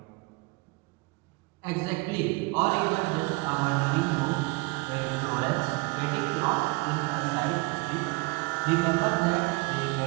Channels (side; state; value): left; quieter; 26.0 dB